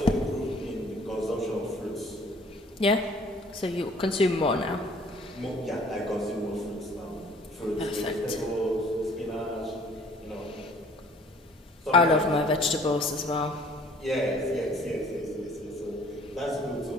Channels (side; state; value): both; normal; correlation 0.55